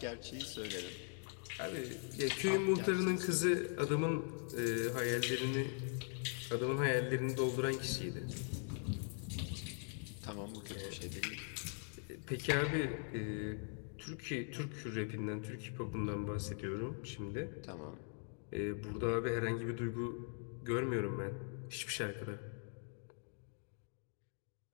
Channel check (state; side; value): silent; right; 50 dB below the other